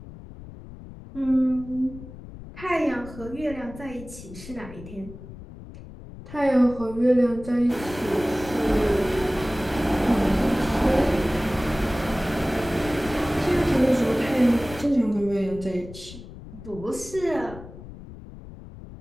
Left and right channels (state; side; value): noise; left; rumble, 15 dB below the sound